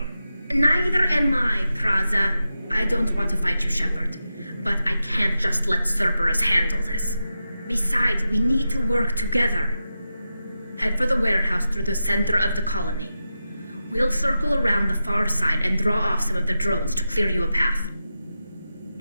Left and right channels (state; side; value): inverted; both; correlation -0.90